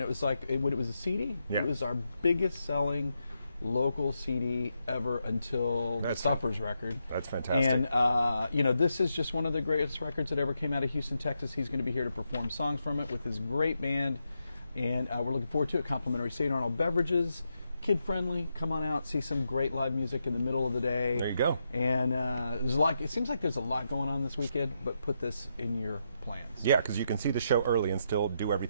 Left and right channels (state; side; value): inverted; both; correlation -0.83